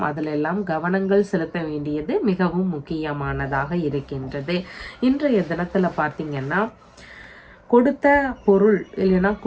அதிலெல்லாம் கவனங்கள் செலுத்த வேண்டியது மிகவும் முக்கியமானதாக இருக்கின்றது. இன்றைய தினத்துல பார்த்தீங்கன்னா கொடுத்த பொருள் இல்லைன்னா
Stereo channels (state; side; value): identical; both; correlation 1.00